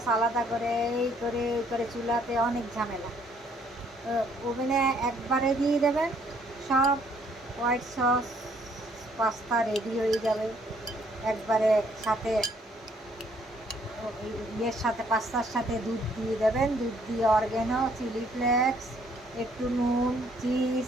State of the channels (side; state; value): both; normal; correlation 0.65